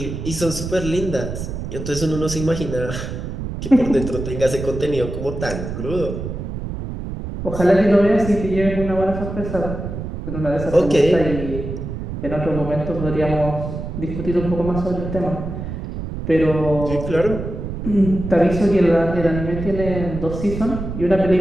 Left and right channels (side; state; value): right; noise; rumble, 6 dB below the sound